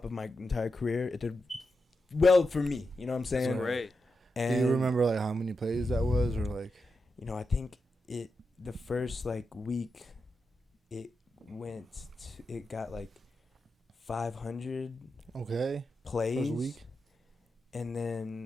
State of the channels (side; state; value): both; normal; correlation 0.88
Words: of my entire career. It did well for me, you know what I'm saying? That's great. And do you remember like how many plays that was, or like? You know, I think the first like week, it got like 500 plays. First week. And